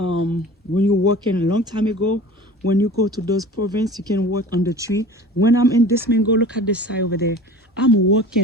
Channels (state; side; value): normal; both; correlation 0.40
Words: you're working a long time ago, when you go to those province, you can work on the tree. When I'm in this mango, look at this side over there. I'm